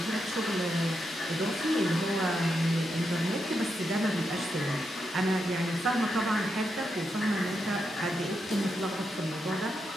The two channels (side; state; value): both; normal; correlation 0.84